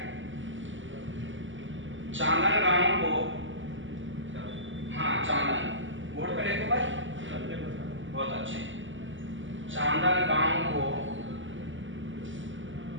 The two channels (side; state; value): left; late; 0.56 ms